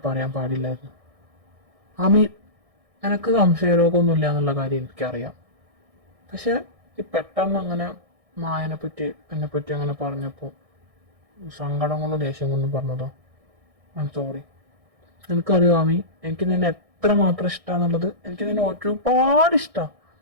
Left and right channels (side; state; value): left; late; 1.6 ms